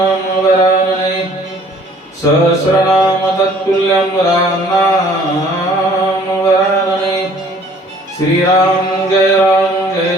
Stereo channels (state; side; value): normal; both; correlation 0.55